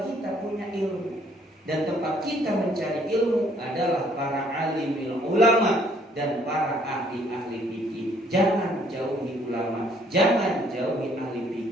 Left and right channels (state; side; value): normal; both; correlation 0.63